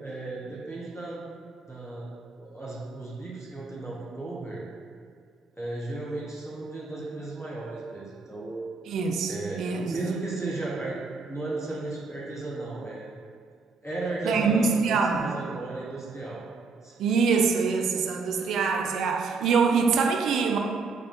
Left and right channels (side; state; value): left; quieter; 4.3 dB